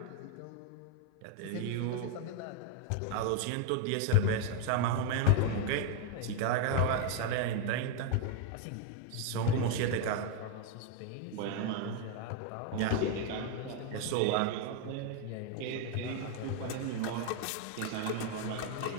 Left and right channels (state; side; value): different; both; correlation 0.01